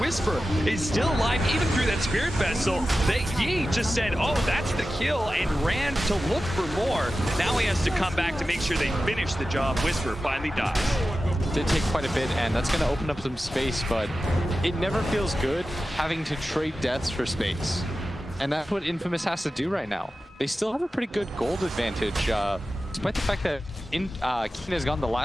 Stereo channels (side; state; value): both; normal; correlation 0.94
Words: is still alive even through that Spirit Vessel. Yi just said, oh, that's the kill, and ran to look for more. Now he has to come back to make sure they finish the job. Whisper finally dies. Did take quite a bit, and that's going to open up some space, but it never feels good having to trade deaths for space. And that's what Infamous has to do right now. They still have a pretty good gold advantage, despite the fact that Keen has gotten the